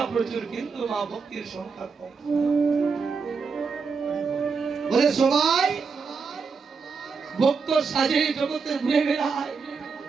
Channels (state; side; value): quieter; left; 5.2 dB